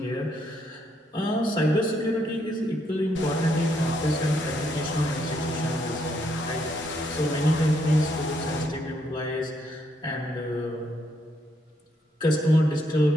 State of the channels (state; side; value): normal; both; correlation 0.75